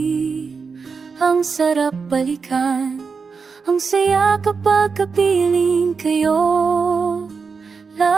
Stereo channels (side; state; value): left; quieter; 5.2 dB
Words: Ang sarap balikan, ang saya kapag kapiling kayo